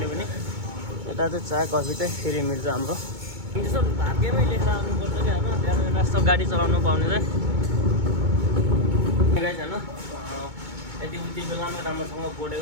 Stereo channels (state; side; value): late; left; 2.2 ms